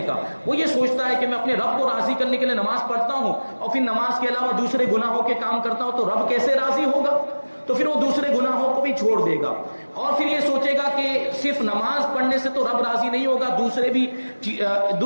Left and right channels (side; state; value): both; inverted; correlation -1.00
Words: کا۔ وہ یہ سوچتا ہے کہ میں اپنے رب کو راضی کرنے کے لیے نماز پڑھتا ہوں اور پھر نماز کے علاوہ دوسرے گناہوں کے کام کرتا ہوں تو رب کیسے راضی ہوگا؟ تو پھر وہ دوسرے گناہوں کو بھی چھوڑ دے گا، اور پھر یہ سوچے گا کہ صرف نماز پڑھنے سے تو رب راضی نہیں ہوگا،